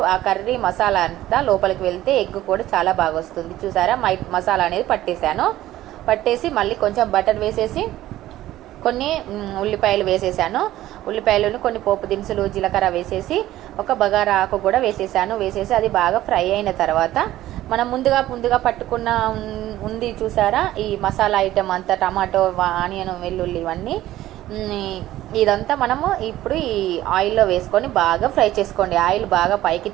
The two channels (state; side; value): quieter; left; 14.6 dB